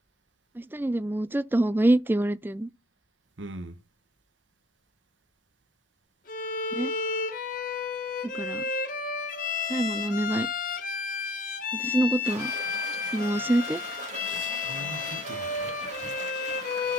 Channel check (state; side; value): normal; both; correlation 0.60